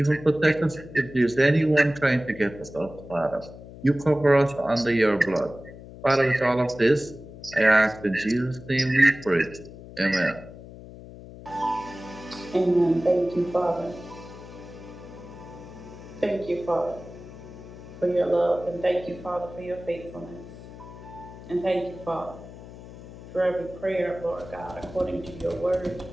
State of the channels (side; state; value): left; noise; hum, 16 dB below the sound